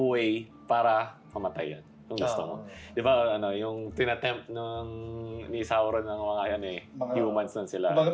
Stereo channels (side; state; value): both; identical; correlation 1.00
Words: way para mamatay yan. Kung gusto mo. Di ba, yung tinatempt ni Sauron ng mga humans nun sila. Kumbaga